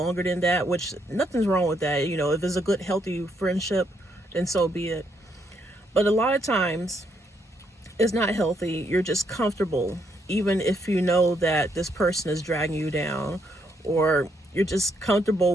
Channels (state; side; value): normal; both; correlation 0.74